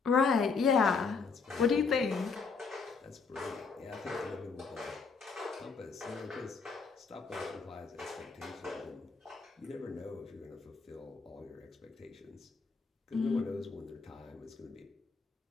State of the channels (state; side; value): quieter; right; 5.0 dB